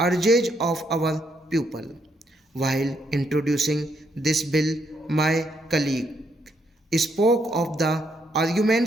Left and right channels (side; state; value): both; normal; correlation 0.75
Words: of our people. While introducing this bill, my colleague spoke of the